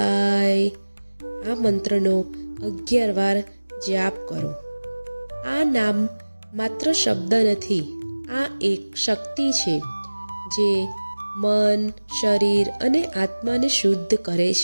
આ મંત્રનો 11 વાર જાપ કરો. આ નામ માત્ર શબ્દ નથી, આ એક શક્તિ છે જે મન, શરીર અને આત્માને શુદ્ધ કરે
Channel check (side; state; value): both; inverted; correlation -1.00